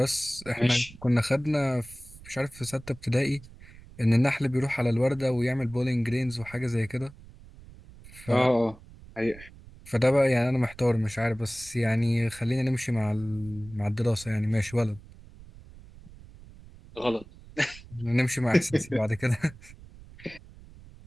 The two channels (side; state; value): right; noise; rumble, 20 dB below the sound